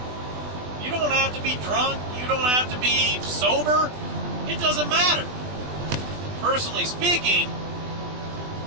You don't have to be drunk. You don't have to be sober. It doesn't matter. Personally speaking,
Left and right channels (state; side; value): late; left; 20 ms